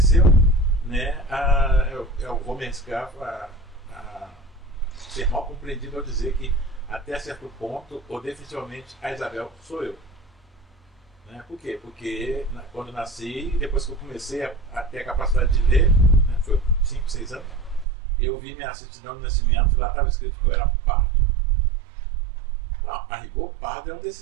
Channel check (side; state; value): left; drops out; at 17.9 s